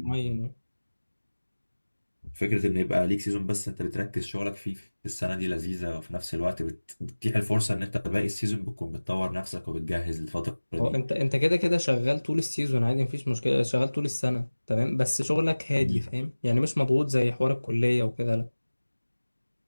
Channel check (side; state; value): both; inverted; correlation -1.00